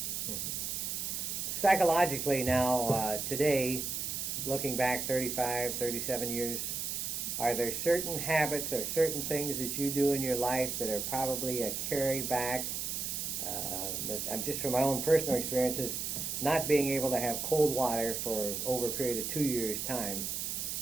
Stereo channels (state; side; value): noise; right; hiss, 3 dB below the sound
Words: Psychologically now, today, looking back 35, 37 years, are there certain habits or certain things that you do in your life that are probably a carry back? I'm just from my own personal experiences, not being able to have cold water for over a period of 2 years' time.